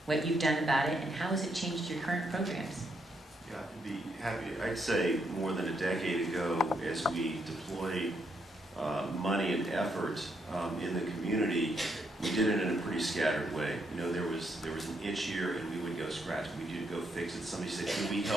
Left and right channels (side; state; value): both; normal; correlation 0.77